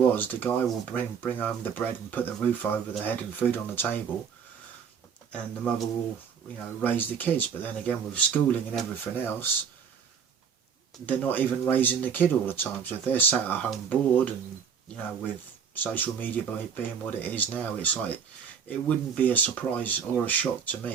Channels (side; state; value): left; quieter; 7.0 dB